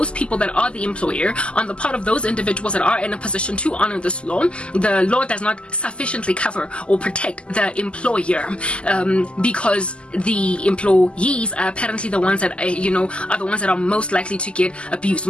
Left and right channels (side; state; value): right; late; 0.052 ms